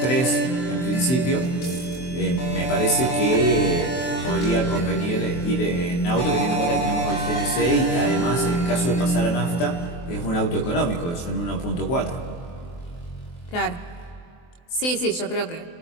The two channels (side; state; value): right; late; 23 ms